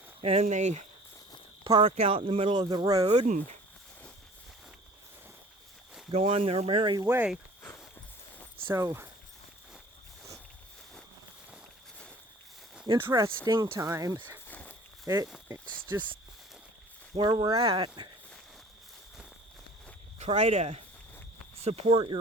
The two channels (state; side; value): normal; both; correlation 0.48